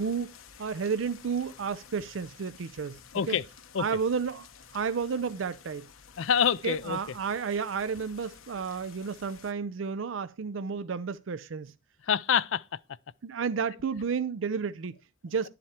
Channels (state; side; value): normal; both; correlation -0.09